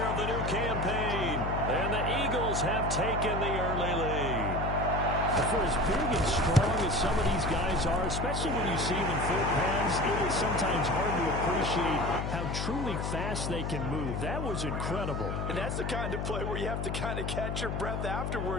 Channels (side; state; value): left; noise; hum, 2 dB below the sound